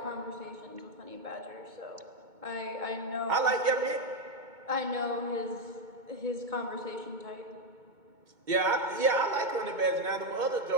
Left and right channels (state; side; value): late; left; 2.2 ms